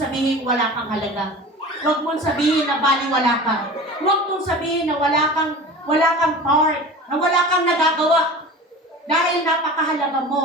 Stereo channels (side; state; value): both; normal; correlation 0.36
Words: wala kang halaga. Huwag mong sabihin na baliwala ka. Huwag mong sabihin na wala kang part, na wala kang nagagawa. Dahil napakahalaga